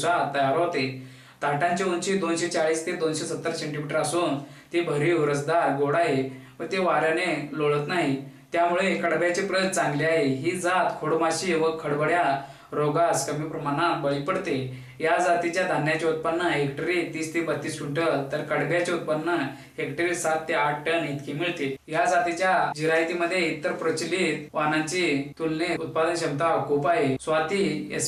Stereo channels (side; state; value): both; identical; correlation 1.00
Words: तयार होते। ताटांची उंची 240 ते 270 सेंटीमीटर असून ती भरीव रसदार गोड आहे व ते वाऱ्याने लोळत नाही। त्यामुळे कडब्याची प्रत चांगली आहे। ही जात खोडमाशी व खडबड्या रोगास कमी प्रमाणात बळी पडते। या जातीच्या धान्याचे उत्पन्न हेक्टरी 30 ते 32 क्विंटल तर कडब्याचे उत्पन्न हेक्टरी 7 ते 8 टन इतके मिळते। या जातीच्या जिरायतीमध्ये इतर प्रचलित वाणांची तुलनेत उत्पादन क्षमता खूप आहे। स्वाती